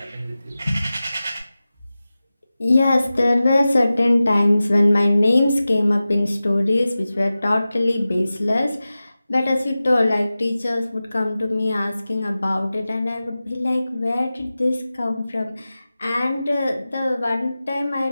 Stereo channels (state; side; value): inverted; both; correlation -0.95